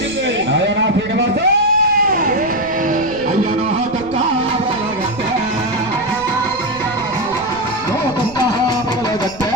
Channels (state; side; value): noise; right; rumble, 18 dB below the sound